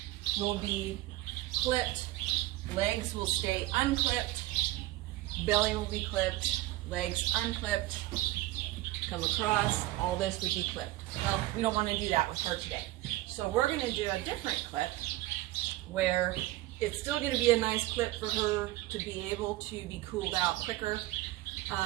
will be clipped, legs will stay unclipped, belly will be clipped, legs unclipped, come across, all this would be clipped. Well, we don't want to do that with her today. So we're going to do a different clip where it's still going to be a nice clip for her to be able to be cooled out quicker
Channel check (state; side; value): quieter; left; 17.2 dB